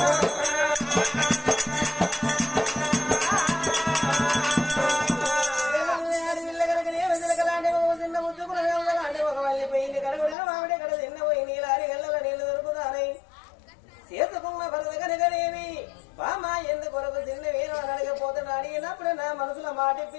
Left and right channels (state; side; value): drops out; right; at 10.4 s